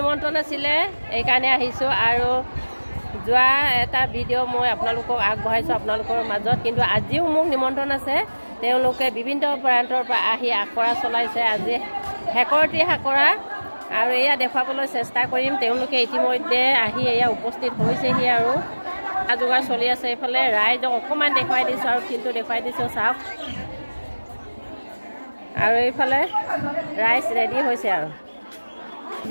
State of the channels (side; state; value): both; inverted; correlation -1.00